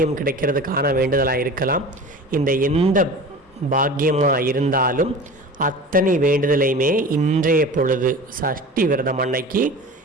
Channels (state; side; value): normal; both; correlation 0.36